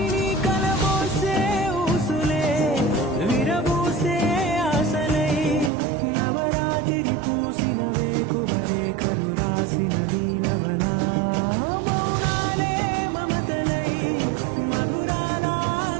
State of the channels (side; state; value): left; drops out; at 5.7 s